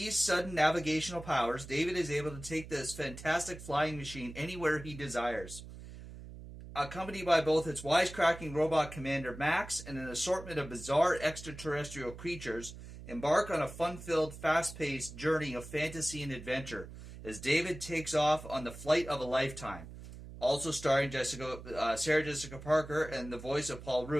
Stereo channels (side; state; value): right; noise; hum, 13 dB below the sound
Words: sudden navigational powers, David is able to take this fantastic flying machine anywhere he desires. Accompanied by both its wisecracking robot commander Max and an assortment of bizarre extraterrestrial creatures, embark on a fun-filled, fast-paced journey of fantasy and adventure as David takes off on the flight of a lifetime. Also starring Sarah Jessica Parker and the voice of Paul